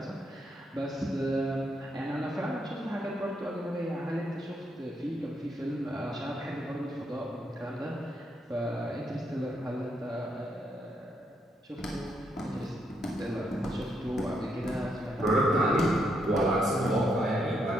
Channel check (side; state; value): both; normal; correlation 0.77